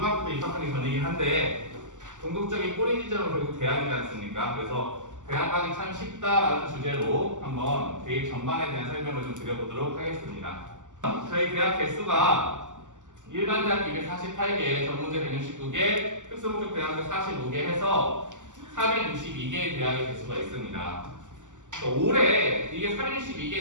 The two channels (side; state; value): left; late; 0.86 ms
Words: 때 입학하기 전이긴 한데 궁극적인 꼬리 지점은 결국 대학이지 않습니까? 그래서 대학 가기 참 쉽다라는 주제로 한번 대입 전반에 대한 설명을 좀 드려보도록 하겠습니다. 저희 대학 개수가 일반 대학 248개, 전문대 169개, 특수목적 대학교 45개 해서 462개의 대학의 개수가 있습니다. 올해 이게